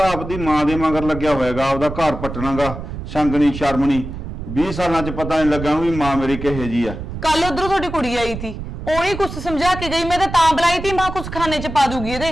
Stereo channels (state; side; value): noise; right; rumble, 8 dB below the sound